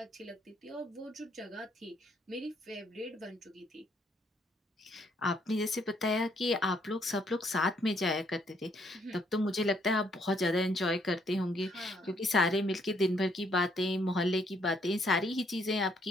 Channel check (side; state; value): both; normal; correlation 0.69